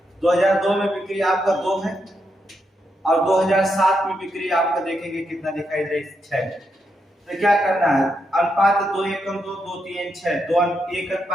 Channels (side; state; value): both; normal; correlation 0.82